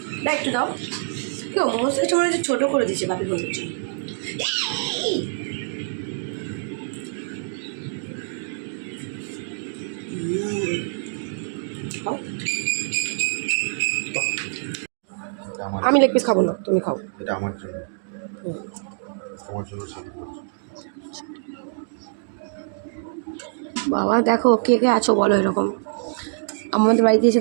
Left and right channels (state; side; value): silent; left; digital silence